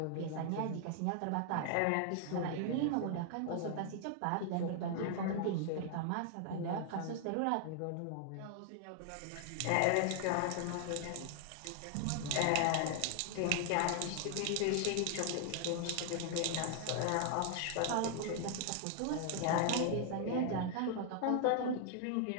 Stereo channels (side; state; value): both; different; correlation 0.00